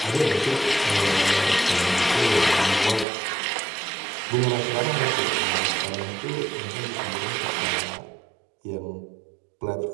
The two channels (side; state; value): left; drops out; at 3.1 s